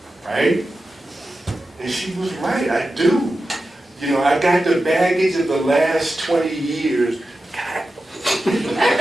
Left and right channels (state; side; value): normal; both; correlation 0.92